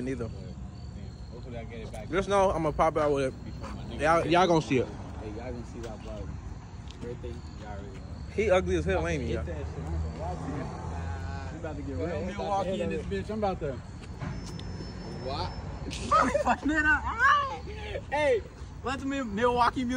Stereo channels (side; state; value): both; identical; correlation 1.00